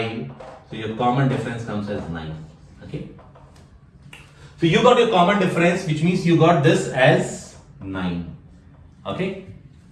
So your common difference comes as 9. Okay. So you got your common difference, which means you got this as 9. Okay.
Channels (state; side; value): identical; both; correlation 1.00